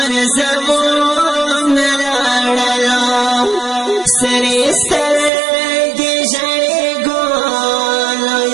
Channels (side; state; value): left; drops out; at 5.3 s